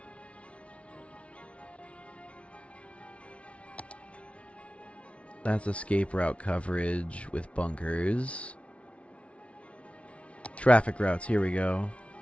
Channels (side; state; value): right; late; 0.062 ms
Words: That's escape route coverage with bunkers. Traffic routes, here we go.